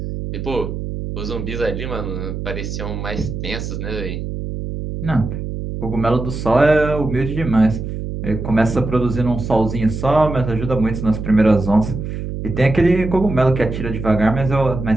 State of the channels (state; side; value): noise; right; hum, 6 dB below the sound